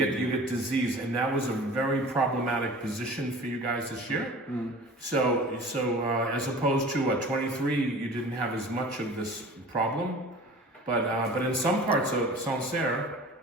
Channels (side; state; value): both; normal; correlation 0.41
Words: get disease, and that was a very problematic position for you guys this year. Mm. So as opposed to 23, you didn't have as much of this problem. But in some parts of Sancerre,